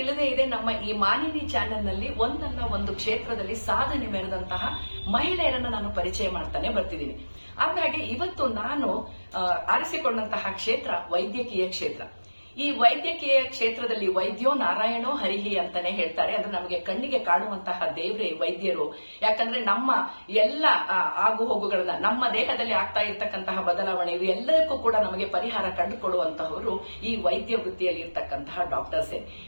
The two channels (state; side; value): inverted; both; correlation -1.00